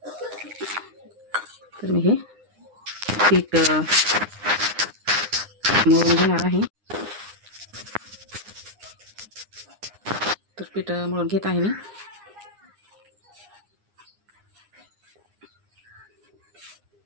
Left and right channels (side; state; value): left; late; 9.8 ms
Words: तर मी हे पीठ मळून घेणार आहे. तर पीठ मळून घेत आहे मी.